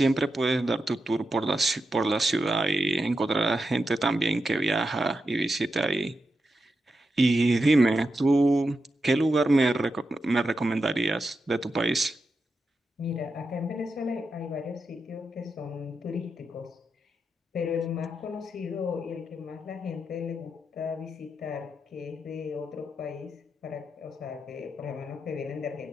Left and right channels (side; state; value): both; normal; correlation 0.87